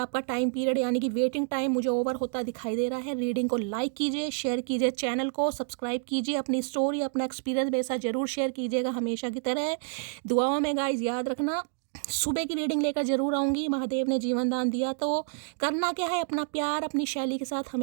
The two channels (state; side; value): silent; left; digital silence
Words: टाइम पीरियड यानी कि वेटिंग टाइम मुझे ओवर होता दिखाई दे रहा है। रीडिंग को लाइक कीजिए, शेयर कीजिए, चैनल को सब्सक्राइब कीजिए, अपनी स्टोरी अपना एक्सपीरियंस मेरे साथ जरूर शेयर कीजिएगा हमेशा की तरह। दुआओं में गाइस याद रखना, सुबह की रीडिंग लेकर जरूर आऊँगी। महादेव ने जीवन दान दिया तो करना क्या है, अपना प्यार अपनी शैली के साथ